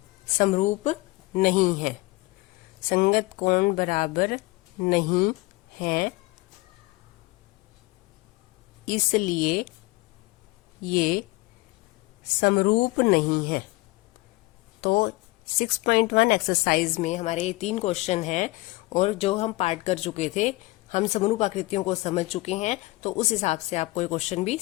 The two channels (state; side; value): quieter; right; 21.7 dB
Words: समरूप नहीं है। संगत कोण बराबर नहीं है, इसलिए ये समरूप नहीं है। तो 6.1 एक्सरसाइज में हमारे ये 3 क्वेश्चन हैं, और जो हम पार्ट कर चुके थे, हम समरूप आकृतियों को समझ चुके हैं। तो तो उस हिसाब से आपको ये क्वेश्चन भी